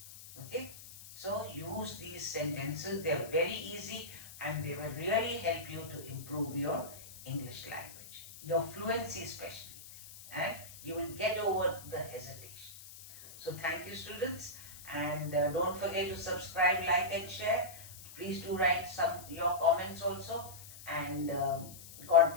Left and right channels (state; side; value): noise; left; hiss, 16 dB below the sound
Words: Okay? So use these sentences. They are very easy and they will really help you to improve your English language, your fluency especially, and you will get over the hesitation. So thank you, students, and don't forget to subscribe, like and share. Please do write your comments also, and God